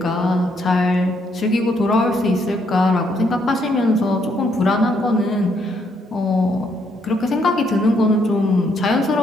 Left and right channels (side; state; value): both; normal; correlation 0.73